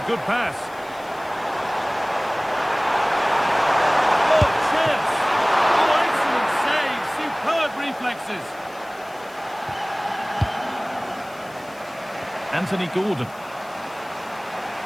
good pass. Oh, chance! Oh, excellent save! Superb reflexes. Anthony Gordon.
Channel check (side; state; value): left; noise; hiss, 25 dB below the sound